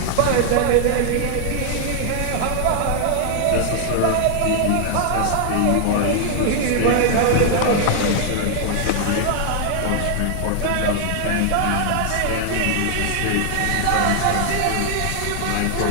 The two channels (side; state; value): both; different; correlation 0.00